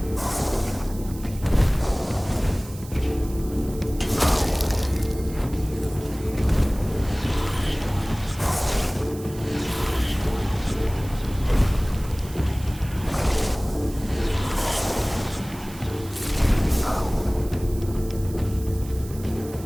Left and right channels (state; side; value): noise; right; hiss, 18 dB below the sound